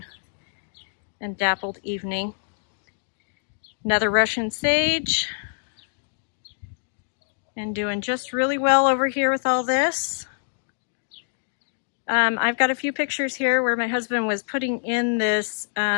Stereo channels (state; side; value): silent; right; digital silence